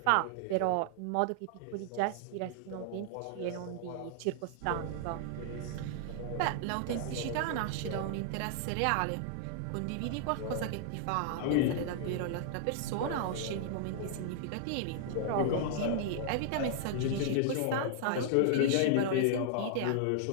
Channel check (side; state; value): both; different; correlation -0.01